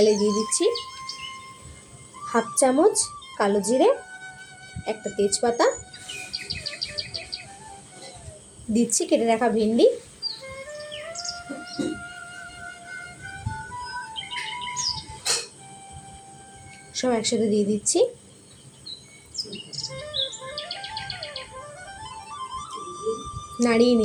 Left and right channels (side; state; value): both; identical; correlation 1.00